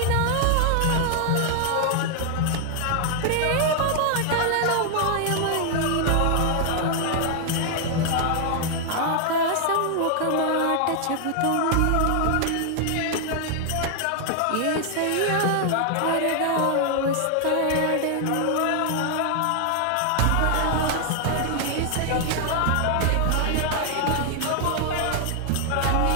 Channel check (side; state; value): both; different; correlation 0.00